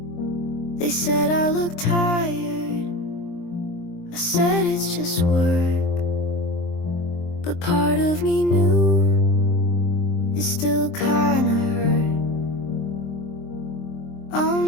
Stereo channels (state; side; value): late; right; 23 ms